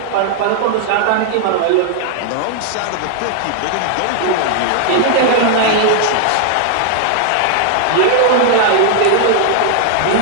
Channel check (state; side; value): different; both; correlation 0.00